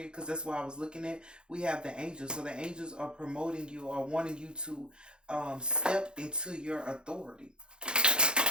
because that's what I was looking at. We have the angels. So the angels are promoting you or wanting you to step into your authority.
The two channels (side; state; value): left; late; 0.049 ms